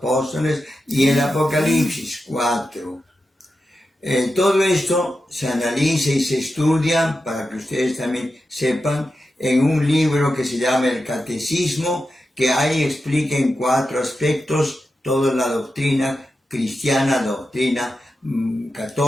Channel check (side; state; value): both; normal; correlation 0.90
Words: y el Apocalipsis 4. Todo esto se analiza y se estudia, para que ustedes también sepan, en un libro que se llama el Catecismo, que ahí explica en 4 aspectos toda la doctrina cristiana, doctrina